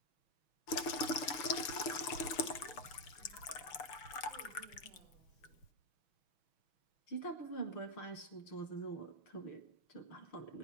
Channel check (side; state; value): right; late; 6.2 ms